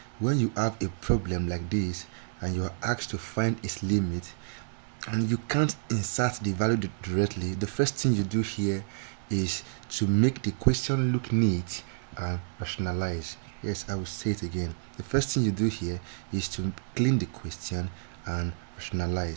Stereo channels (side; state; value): left; silent; digital silence